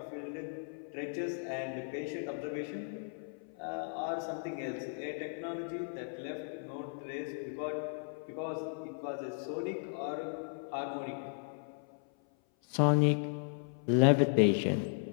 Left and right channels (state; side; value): silent; right; 54 dB below the other